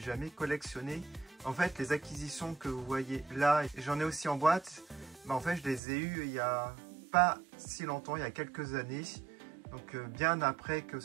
jamais collectionnées. En fait, les acquisitions que vous voyez là, j'en ai aussi en boîte, en fait, je les ai eues il n'y a pas si longtemps, il y a quelques années, donc bien après que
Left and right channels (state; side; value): drops out; left; at 5.8 s